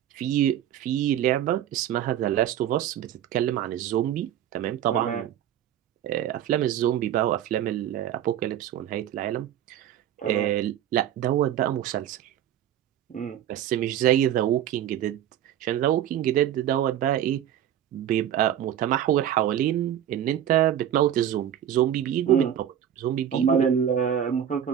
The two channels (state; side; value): quieter; left; 10.5 dB